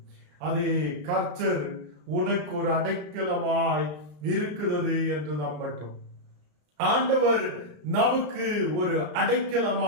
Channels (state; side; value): late; left; 33 ms